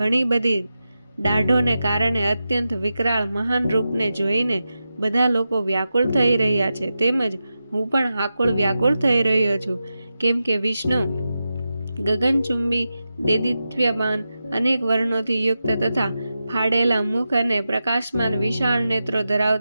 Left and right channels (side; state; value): both; inverted; correlation -0.91